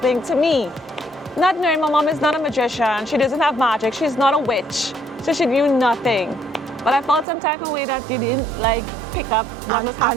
to me? Not knowing my mom is not a magician. She doesn't have magic. She's not a witch. So she knew nothing. But I felt some type of way that you didn't pick up what was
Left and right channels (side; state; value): left; drops out; at 7.2 s